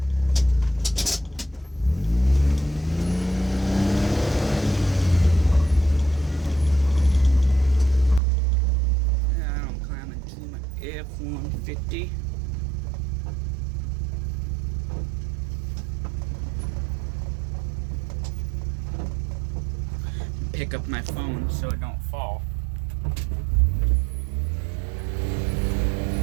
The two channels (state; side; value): drops out; left; at 8.2 s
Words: Now I'm climbing to my F-150. pick up my phone so it don't fall.